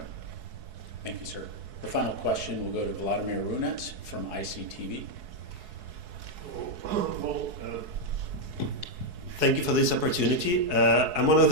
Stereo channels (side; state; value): left; late; 4.7 ms